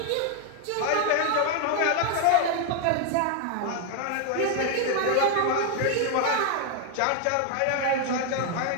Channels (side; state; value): both; different; correlation 0.00